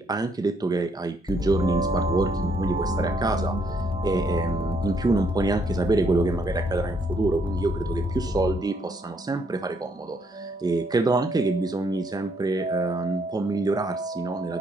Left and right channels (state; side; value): normal; both; correlation 0.70